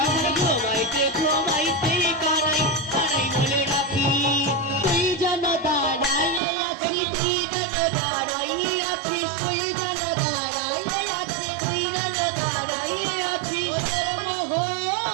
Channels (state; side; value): drops out; left; at 6.4 s